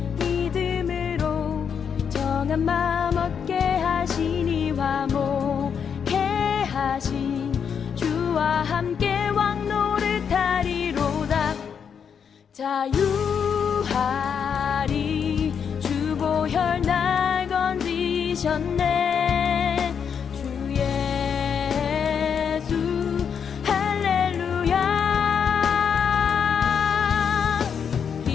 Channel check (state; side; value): quieter; right; 7.2 dB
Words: 믿음으로 정한 마음 얻게 하시니 화목해 하신 주와 함께 왕 노릇하리로다. 자유하리 주 보혈 날 건지셨네. 주 예수 할렐루야.